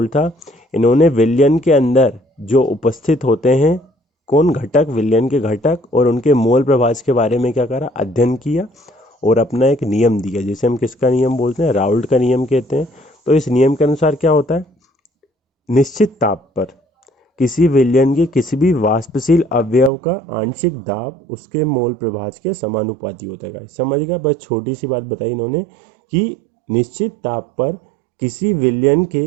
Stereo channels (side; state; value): left; drops out; at 19.9 s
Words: था, इन्होंने विलयन के अंदर जो उपस्थित होते हैं कौन घटक, विलयन के घटक और उनके मोल प्रभाज के बारे में क्या करा? अध्ययन किया और अपना एक नियम दिया, जिसे हम किसका नियम बोलते हैं? राउल्ट का नियम कहते हैं। तो इस नियम के अनुसार क्या होता है? निश्चित ताप पर किसी विलयन के किसी भी वाष्पशील अवयव का आंशिक दाब उसके मोल प्रभाज के समानुपाती होता है गाइस। समझ गया? बस छोटी सी बात बताई इन्होंने कि निश्चित ताप पर किसी विलयन के